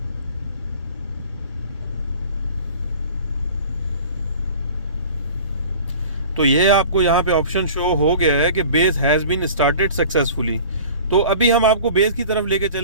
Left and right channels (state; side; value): inverted; both; correlation -0.42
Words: तो ये आपको यहाँ पे ऑप्शन शो हो गया है कि base has been started successfully. तो अभी हम आपको बेस की तरफ लेके